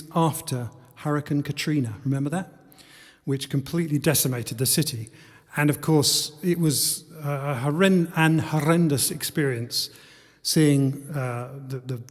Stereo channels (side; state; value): both; identical; correlation 1.00